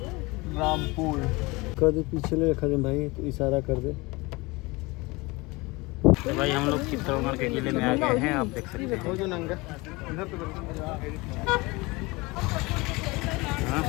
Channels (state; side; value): quieter; right; 24.0 dB